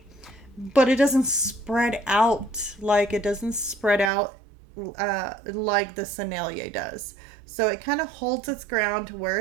but it doesn't spread out like the Sennelier does. So it kind of holds its ground to where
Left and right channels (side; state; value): left; drops out; at 4.1 s